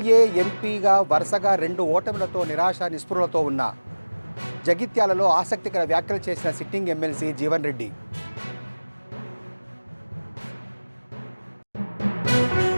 ఎంపీగా వరుసగా 2 ఓటములతో నిరాశ నిస్పృహలతో ఉన్న జగిత్యాలలో ఆసక్తికర వ్యాఖ్యలు చేసిన సిట్టింగ్ ఎమ్మెల్సీ జీవన్ రెడ్డి.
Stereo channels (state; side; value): inverted; both; correlation -1.00